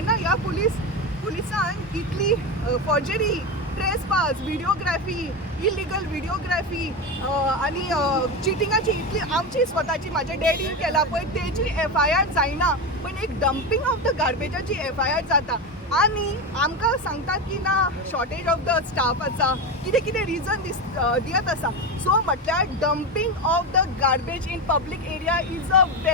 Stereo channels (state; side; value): normal; both; correlation 0.17